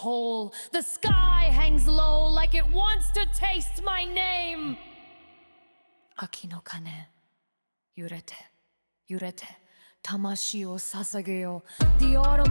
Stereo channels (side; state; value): both; inverted; correlation -1.00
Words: The sky hangs low like it wants to taste my name. Aki no kane, yurete, yurete. Tamashi o sasageyo. The